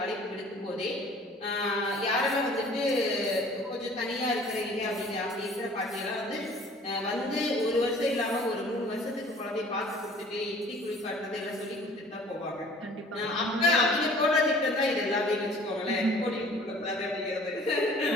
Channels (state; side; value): normal; both; correlation 0.51